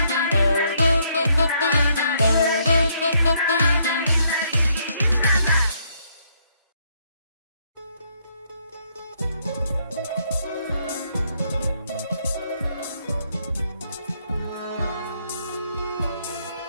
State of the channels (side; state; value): both; inverted; correlation -0.71